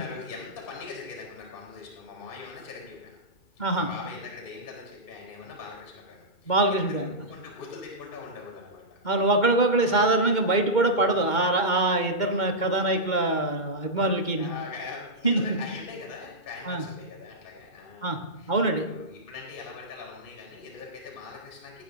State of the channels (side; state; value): right; late; 2.2 ms